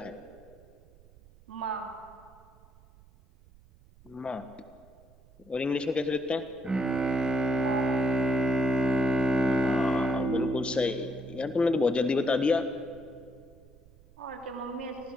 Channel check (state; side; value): noise; right; rumble, 26 dB below the sound